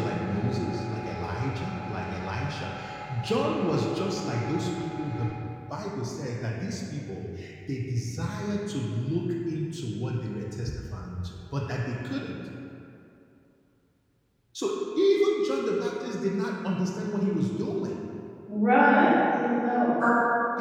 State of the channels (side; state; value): both; identical; correlation 1.00